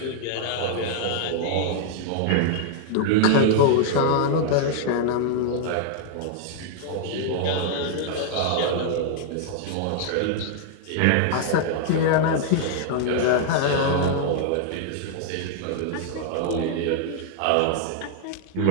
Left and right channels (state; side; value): different; both; correlation -0.01